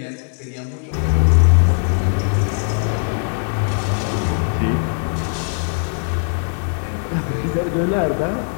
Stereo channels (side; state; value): right; silent; 61 dB below the other